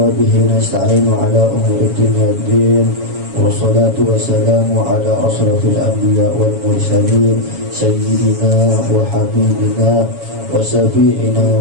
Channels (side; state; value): left; late; 7.2 ms